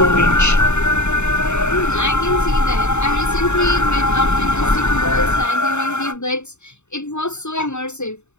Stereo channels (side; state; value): right; late; 0.82 ms